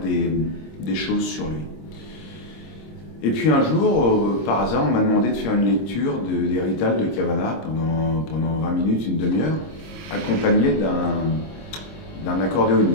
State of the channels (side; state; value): right; late; 26 ms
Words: choses sur lui. Et puis un jour, par hasard, on m'a demandé de faire une lecture des Ritals de Cavana pendant 20 minutes, une demi-heure, accompagné d'un